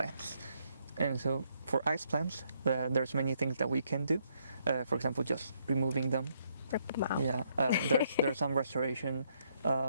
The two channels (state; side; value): inverted; both; correlation -0.73